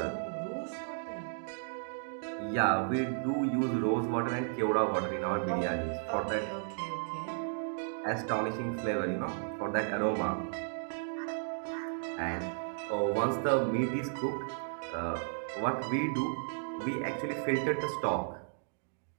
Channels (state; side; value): silent; left; digital silence